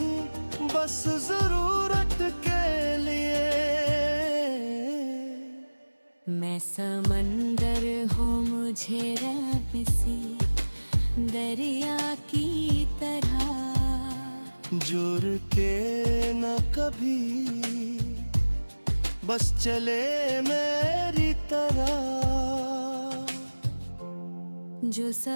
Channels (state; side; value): inverted; both; correlation -1.00